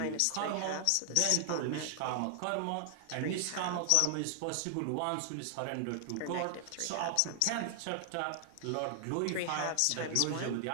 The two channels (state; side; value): different; both; correlation 0.00